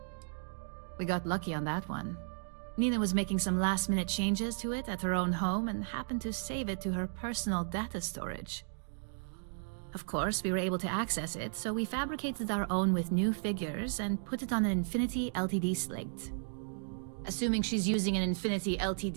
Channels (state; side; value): silent; left; digital silence